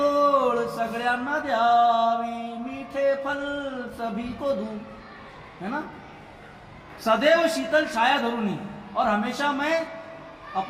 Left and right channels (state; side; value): identical; both; correlation 1.00